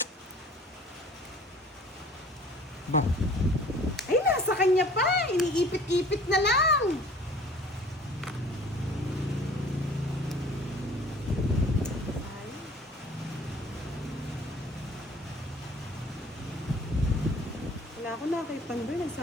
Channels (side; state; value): both; normal; correlation 0.49